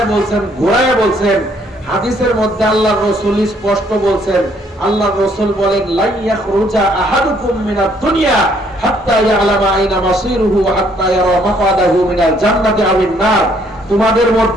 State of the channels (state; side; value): normal; both; correlation 0.66